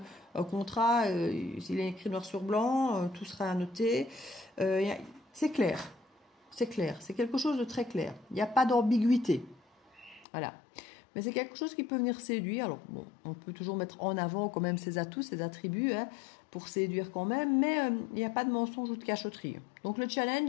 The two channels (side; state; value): right; drops out; at 10.2 s